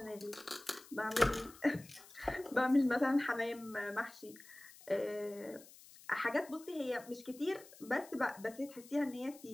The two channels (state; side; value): noise; left; hiss, 20 dB below the sound